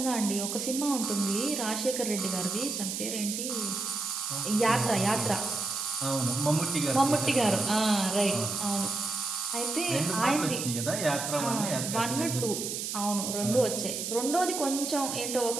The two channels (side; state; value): right; noise; hiss, 4 dB below the sound